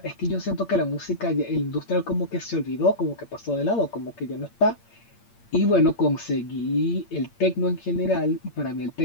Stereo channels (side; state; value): right; late; 8.7 ms